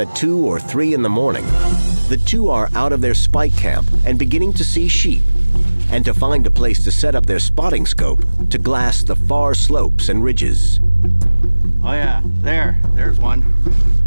at 2 or 3 in the morning, the two are out of their spike camp and beginning to see sheep, and to find a place to set up their spotting scope to glass the far slopes and ridges. Oh yeah, there's one.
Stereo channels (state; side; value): inverted; both; correlation -1.00